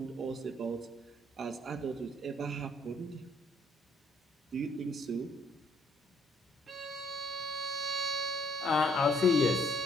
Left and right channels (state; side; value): normal; both; correlation 0.66